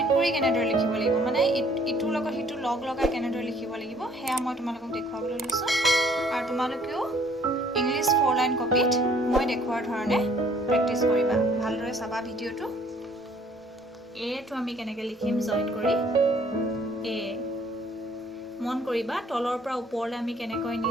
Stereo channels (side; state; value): both; normal; correlation 0.59